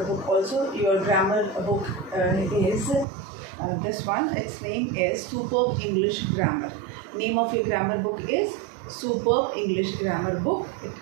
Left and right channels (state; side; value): drops out; left; at 3.1 s